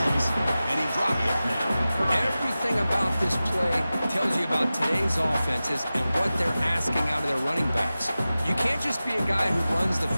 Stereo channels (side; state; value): both; inverted; correlation -0.95